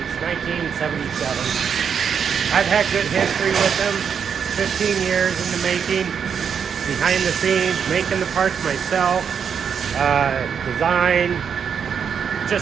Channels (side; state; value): left; quieter; 7.1 dB